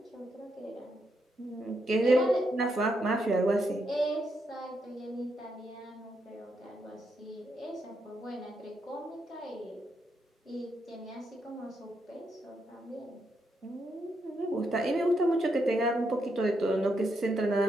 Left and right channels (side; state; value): both; normal; correlation 0.80